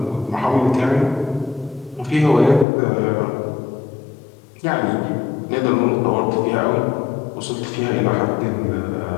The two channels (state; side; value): drops out; right; at 2.7 s